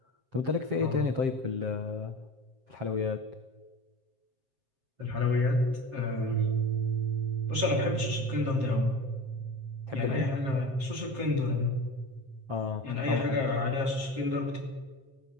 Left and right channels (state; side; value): late; left; 7.5 ms